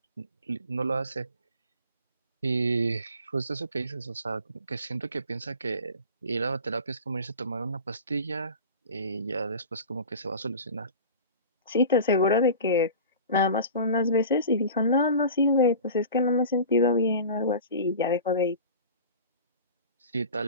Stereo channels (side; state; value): both; inverted; correlation -0.37